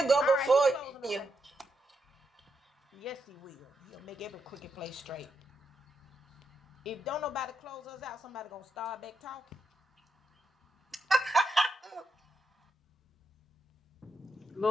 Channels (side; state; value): both; normal; correlation 0.83